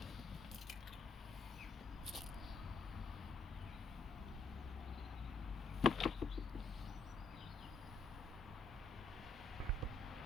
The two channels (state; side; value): quieter; right; 3.6 dB